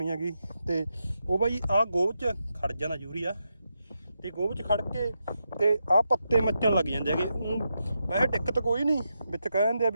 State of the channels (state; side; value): inverted; both; correlation -0.85